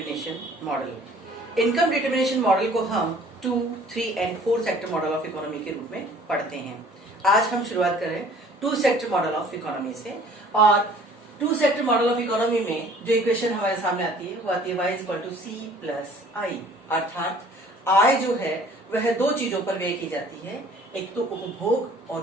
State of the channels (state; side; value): normal; both; correlation 0.53